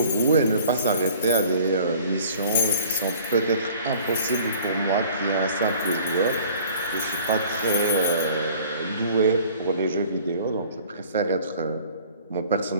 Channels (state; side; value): inverted; both; correlation -0.50